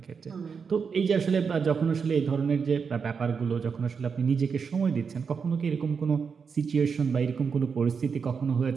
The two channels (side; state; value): left; quieter; 5.9 dB